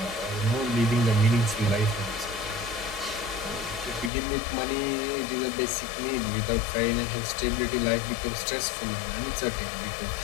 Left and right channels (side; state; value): right; drops out; at 4.1 s